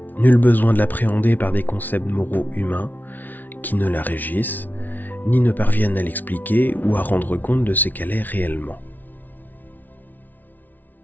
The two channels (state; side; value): late; right; 0.083 ms